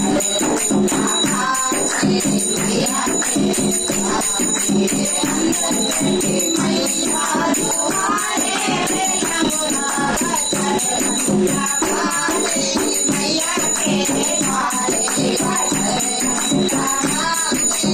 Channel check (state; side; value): identical; both; correlation 1.00